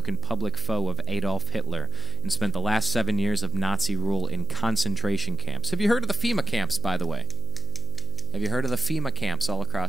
public foe of Adolf Hitler and spent the last 7 years of Nazi rule in concentration camps. Have you heard of the FEMA camps, by the way? Have you heard of the FEMA camps all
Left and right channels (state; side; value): noise; right; hum, 11 dB below the sound